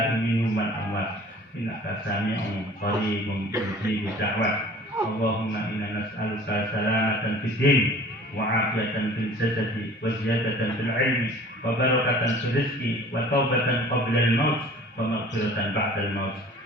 minhum wal amwat innaka sami'un qaribun mujibud da'wat. Allahumma inna nas'aluka salamatan fid din wa 'afiyatan fil jasadi wa ziyadatan fil 'ilmi wa barakatan fil rizqi wa taubatan qabla al maut wa maghfiratan ba'da al maut.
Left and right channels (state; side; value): normal; both; correlation 0.47